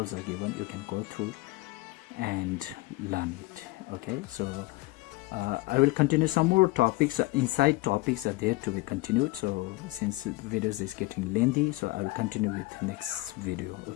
are given. You can go through and learn it. Okay, so I will continue some more topics. Inside topics are there to be continued. So since videos is getting lengthy, so I will continue with the next video.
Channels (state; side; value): quieter; right; 21.2 dB